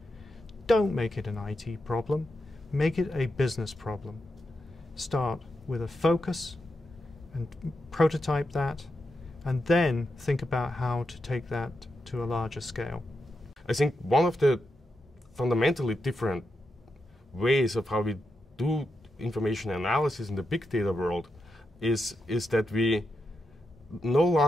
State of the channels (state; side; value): normal; both; correlation 0.86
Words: Don't make it an IT problem. Make it a business problem. Start with a focus and prototype that, and then think about how to take that to a larger scale. I think one of the fundamentally different ways of how we do information analysis in the big data world is that we no